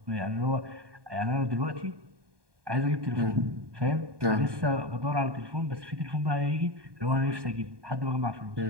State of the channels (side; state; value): left; late; 1.2 ms